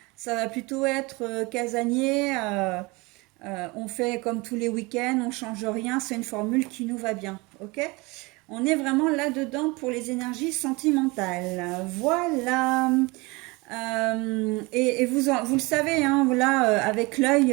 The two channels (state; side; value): quieter; left; 25.1 dB